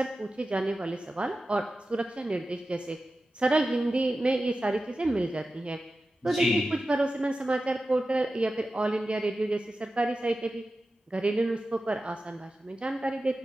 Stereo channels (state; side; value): normal; both; correlation 0.93